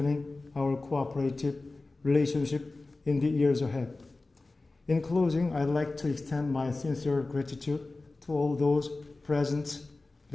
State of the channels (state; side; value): quieter; right; 3.3 dB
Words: our cooperative relationship in the years ahead. In closing, I'd like to extend my sincere gratitude to all those present